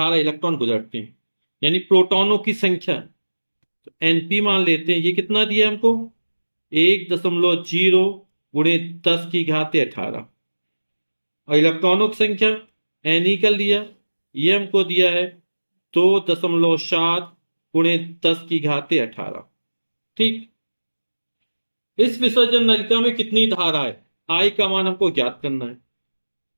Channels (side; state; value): both; inverted; correlation -1.00